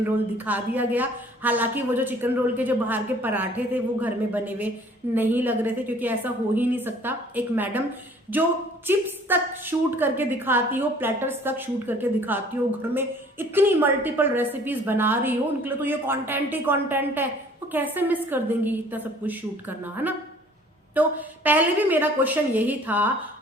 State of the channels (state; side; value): normal; both; correlation 0.54